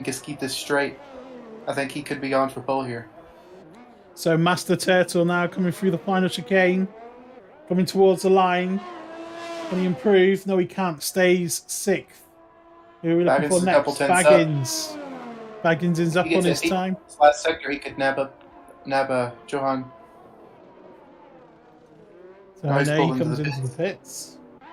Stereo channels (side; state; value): both; identical; correlation 1.00